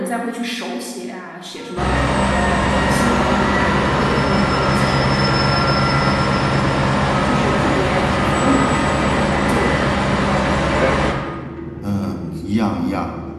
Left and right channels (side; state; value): both; identical; correlation 1.00